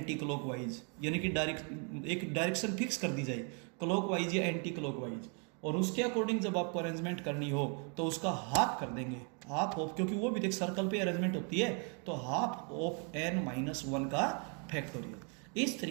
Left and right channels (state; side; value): quieter; left; 37.6 dB